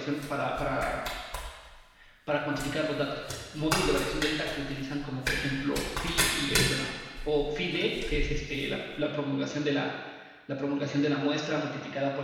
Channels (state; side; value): identical; both; correlation 1.00